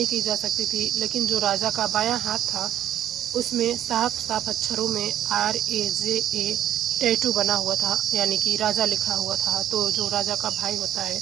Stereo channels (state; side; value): quieter; left; 11.5 dB